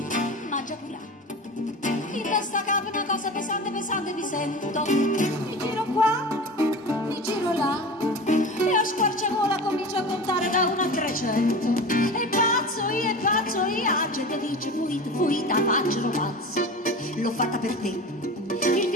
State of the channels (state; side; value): normal; both; correlation 0.32